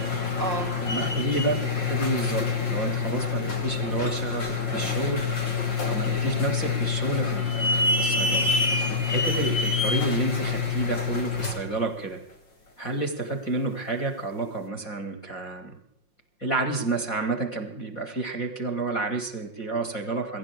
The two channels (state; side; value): late; right; 5.6 ms